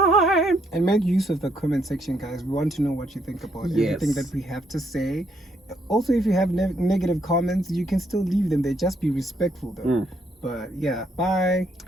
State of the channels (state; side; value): normal; both; correlation 0.73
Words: And make use of the comment section, guys. We want to know what you think about everything Yes. that we have to say. Also, if you have negative comments, you can still leave them there. Just be respectful, though. But yeah, bye.